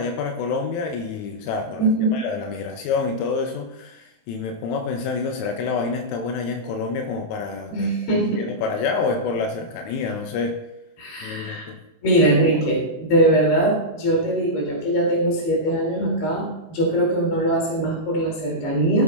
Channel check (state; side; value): late; right; 18 ms